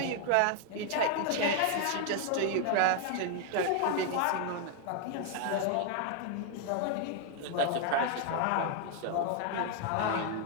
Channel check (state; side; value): different; both; correlation 0.00